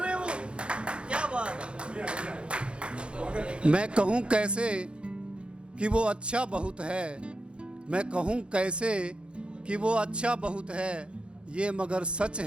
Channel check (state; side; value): late; left; 0.056 ms